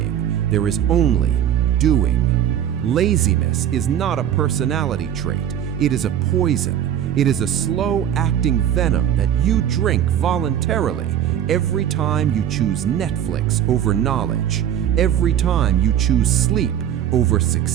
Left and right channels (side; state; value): left; quieter; 10.3 dB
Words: There is only doing. Laziness is not a personality trait. It is a poison. It is a slow-acting venom that you drink voluntarily every time you choose Netflix over knowledge, every time you choose sleep over